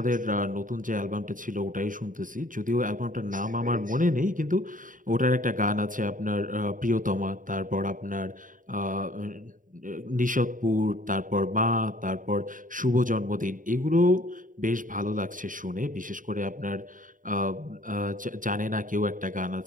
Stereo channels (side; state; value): left; late; 0.39 ms